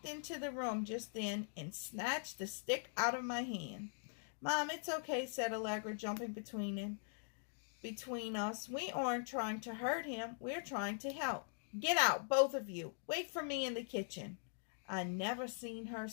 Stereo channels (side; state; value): right; silent; digital silence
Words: into the room just then and snatched the stick out of my hand. Mom, it's okay, said Allegra, jumping between us. We aren't trying to hurt him. We're trying to help. Get out, both of you. Wait for me in the kitchen. I never seen her